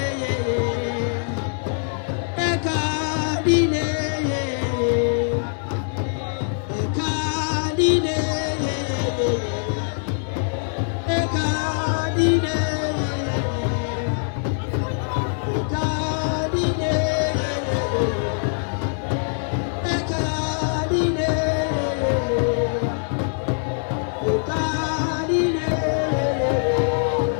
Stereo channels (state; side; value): silent; right; 59 dB below the other